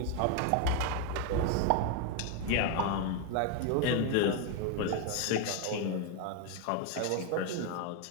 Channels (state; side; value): different; both; correlation 0.01